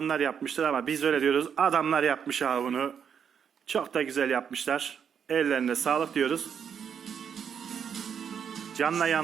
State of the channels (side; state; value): left; quieter; 7.6 dB